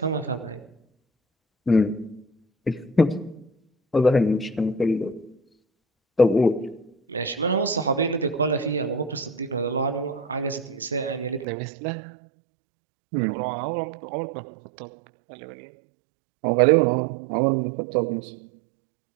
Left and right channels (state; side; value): drops out; left; at 11.5 s